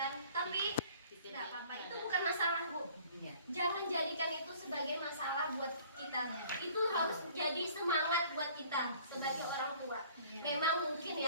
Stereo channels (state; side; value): inverted; both; correlation -0.53